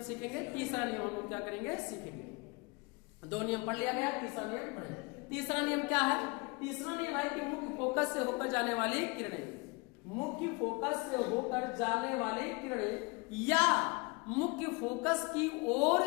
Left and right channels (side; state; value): right; quieter; 28.9 dB